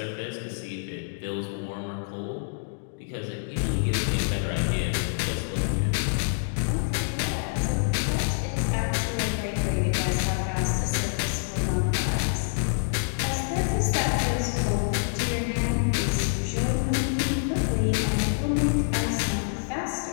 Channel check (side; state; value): right; silent; digital silence